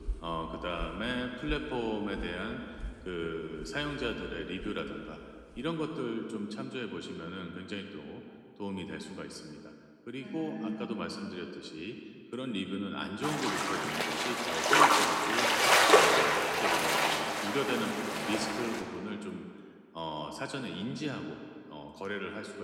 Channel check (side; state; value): both; identical; correlation 1.00